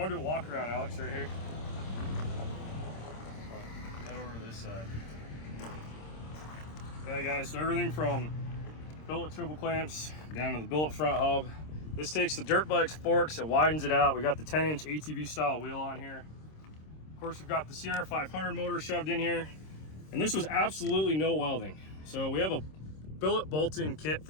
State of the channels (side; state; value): right; late; 26 ms